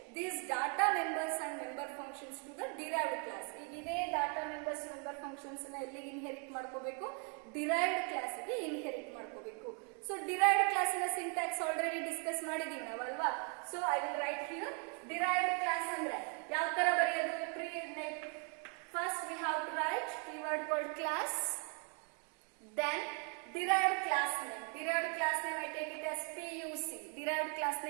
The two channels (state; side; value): quieter; left; 38.1 dB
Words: these data members and member functions to the derived class. ಈಗ ಇದೇ data members member functions ನ ಎಲ್ಲಿಗೆ ಇನ್ಹೆರಿಟ್ ಮಾಡ್ಕೋಬೇಕು, derived class ಗೆ ಇನ್ಹೆರಿಟ್ ಮಾಡ್ಕೋಬೇಕು. So derived class ನ syntax already discuss ಮಾಡಿದೀವಿ ನಾವು ಅಲ್ವಾ. So I will write here derived class ಅಂದ್ರೆ ಯಾವ ತರ ಬರೆಯೋದು. First we have to write keyword called class, then derived class name. Derived class name I take it as PUC. Derived class